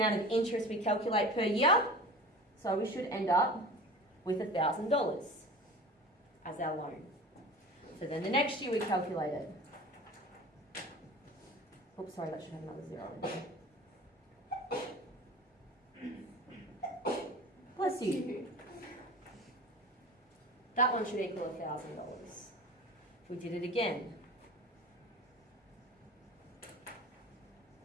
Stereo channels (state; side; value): normal; both; correlation 0.37